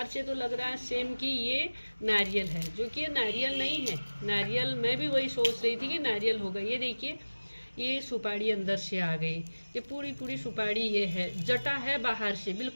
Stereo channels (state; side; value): inverted; both; correlation -1.00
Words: से तो लग रहा है सेम कि ये नारियल है, जो कि ये नारियल नहीं है। नारियल मैं भी वही सोच रही थी कि नारियल होगा। ये देखिए, ये सुपारी अंदर से आ गई। ये पूरी पूरी सुपारी ये है। जटा है बाहर से,